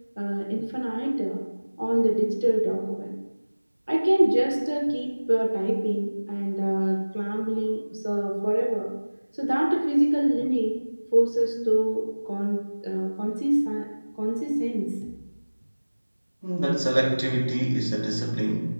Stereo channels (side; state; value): both; inverted; correlation -1.00